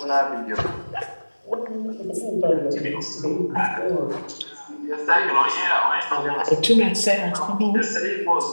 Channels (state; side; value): inverted; both; correlation -1.00